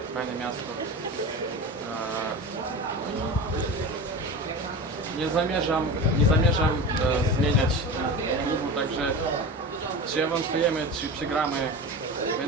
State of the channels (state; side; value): normal; both; correlation 0.29